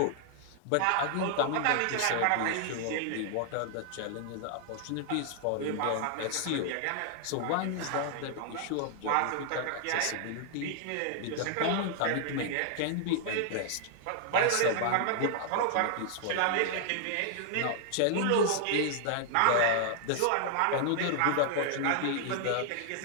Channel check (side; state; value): both; different; correlation 0.00